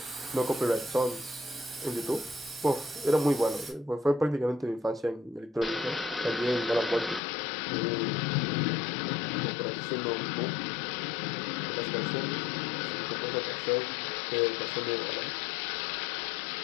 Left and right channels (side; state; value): right; drops out; at 7.2 s